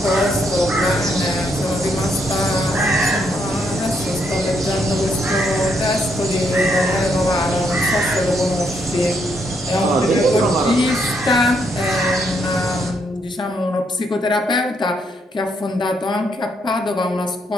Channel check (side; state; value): both; normal; correlation 0.75